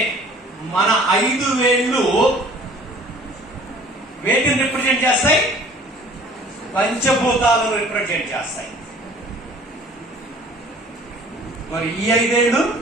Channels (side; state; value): both; normal; correlation 0.50